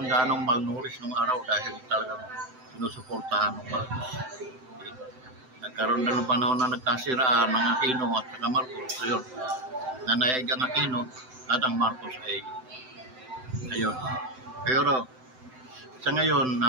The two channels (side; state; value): left; late; 7.8 ms